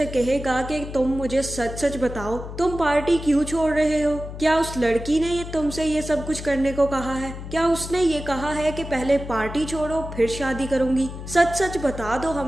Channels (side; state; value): left; noise; hum, 10 dB below the sound